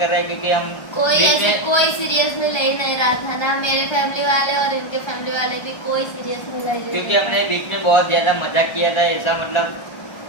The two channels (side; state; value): right; late; 1.2 ms